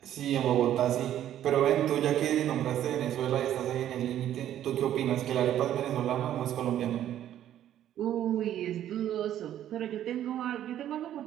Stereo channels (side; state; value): left; quieter; 11.5 dB